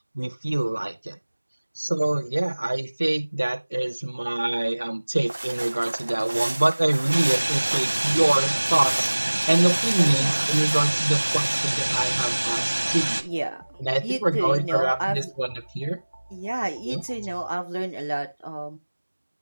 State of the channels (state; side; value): inverted; both; correlation -1.00